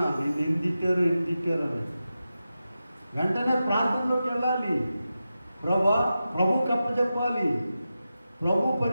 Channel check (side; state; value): both; inverted; correlation -0.91